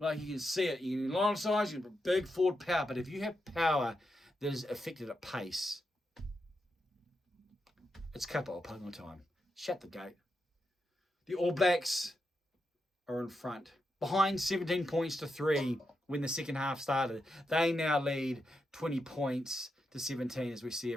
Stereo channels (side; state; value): both; normal; correlation 0.86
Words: you can see it, a lot of sides, you have big forward power, but if you have power that is affected at pace, it's capital punting time. Shut the gate. The All Blacks are in front. Behind 17 points to 3 when the second half started. They now lead 20 points to 17 as we see